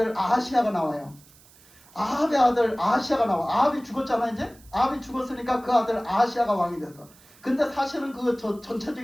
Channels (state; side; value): noise; right; hiss, 26 dB below the sound